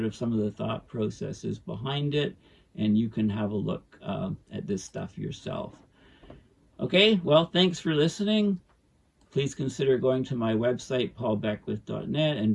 of some of the thought processes behind it, and you can have a look at this stuff yourself. Okay, well, thanks for listening. Please consider going to my website, paulbeckwith.net, and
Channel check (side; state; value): both; identical; correlation 1.00